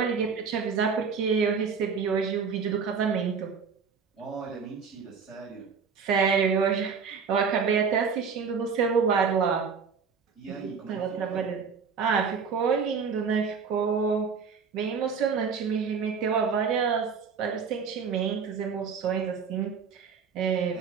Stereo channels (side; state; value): left; quieter; 5.9 dB